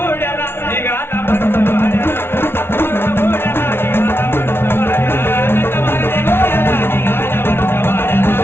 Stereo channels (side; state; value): right; late; 0.12 ms